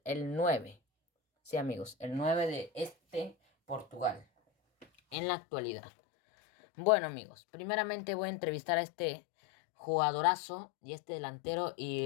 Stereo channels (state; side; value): drops out; right; at 5.2 s